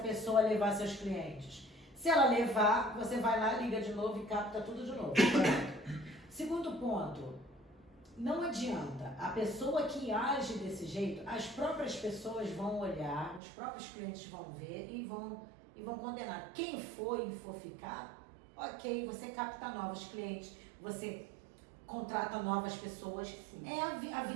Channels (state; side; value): drops out; left; at 13.4 s